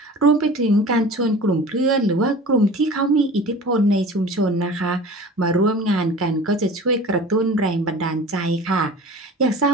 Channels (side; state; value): both; normal; correlation 0.40